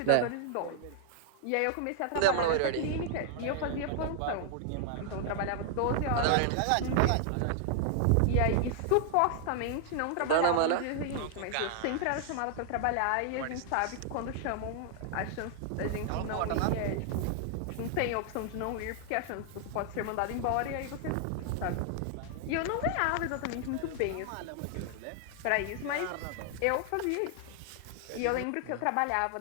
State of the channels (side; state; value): both; different; correlation 0.00